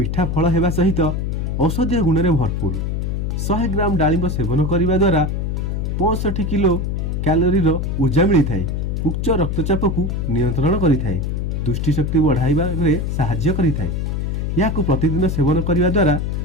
फल हेबा सहित औषधीय गुण रे भरपूर। 100 ग्राम डालिंब सेवन करिबा द्वारा 65 किलो कैलोरी रो ऊर्जा मिली थाए। उच्च रक्तचाप को नियंत्रण करि थाए। दृष्टि शक्ति बढ़ाइबा रे सहाय्य करि थाए। याकु प्रतिदिन सेवन करिबा द्वारा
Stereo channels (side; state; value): left; noise; hum, 1 dB below the sound